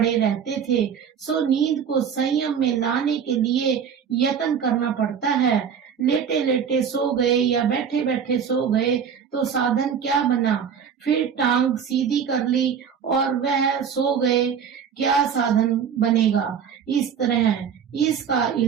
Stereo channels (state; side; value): quieter; left; 7.4 dB